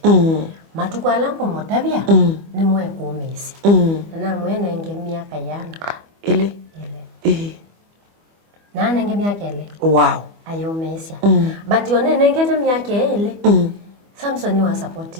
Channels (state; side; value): late; left; 25 ms